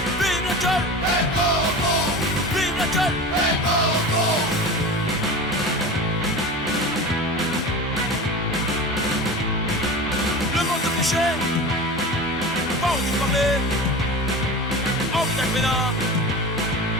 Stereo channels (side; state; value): both; normal; correlation 0.31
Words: vive la gueule, Hey oh! vive la gueule. Hey oh! peinards